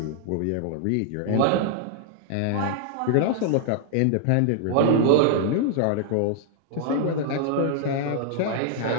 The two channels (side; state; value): both; different; correlation 0.00